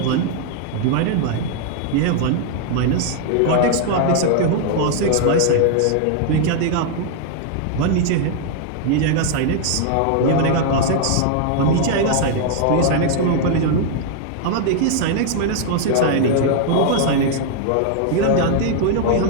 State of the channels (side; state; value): both; different; correlation 0.00